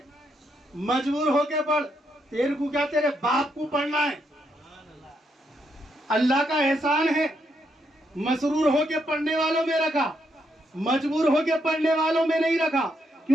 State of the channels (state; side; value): normal; both; correlation 0.78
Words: مجبور ہو کے پڑھ، تیرے کو کیا تیرے باپ کو پڑھنا ہے. اللہ کا احسان ہے مسرور ہو کے پڑھنے والوں میں رکھا، مجبور ہو کے پڑھنے والوں میں نہیں رکھا.